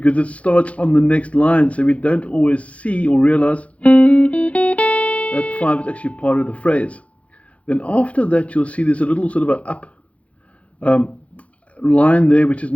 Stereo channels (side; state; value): right; late; 0.064 ms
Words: it starts on the next line, so we don't always see or realize that 5 is actually part of the phrase. Then after that you'll see there's a little sort of an up line there, which